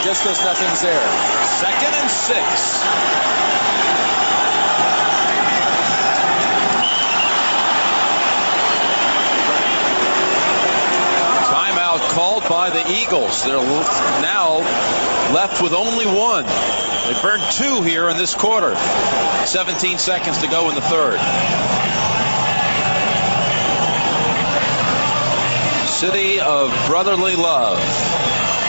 just because nothing's there. Second and 6. Called by the Eagles. They're now left with only one. They burned 2 here in this quarter. 17 seconds to go in the third. City of brotherly love.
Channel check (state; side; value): inverted; both; correlation -1.00